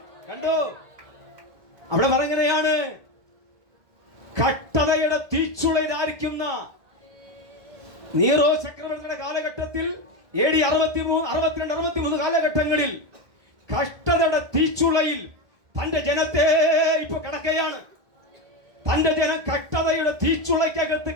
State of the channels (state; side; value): late; left; 1.6 ms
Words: കണ്ടോ, അവിടെ പറഞ്ഞെയാണ്, കഷ്ടതയുടെ തീച്ചുളയിലായിരിക്കുന്ന നീറോ ചക്രവർത്തിയുടെ കാലഘട്ടത്തിൽ AD 63, 62, 63 കാലഘട്ടങ്ങളിൽ കഷ്ടതയുടെ തീച്ചുളയിൽ തന്റെ ജനത്തെ ഇപ്പൊ കിടക്കുകയാണ്. തന്റെ ജനം കഷ്ടതയുടെ തീച്ചുളയ്ക്കകത്ത്